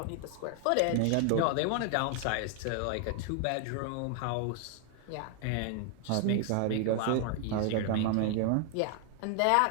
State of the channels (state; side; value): different; both; correlation 0.00